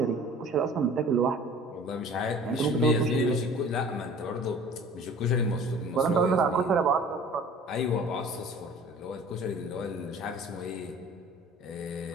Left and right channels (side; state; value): both; normal; correlation 0.46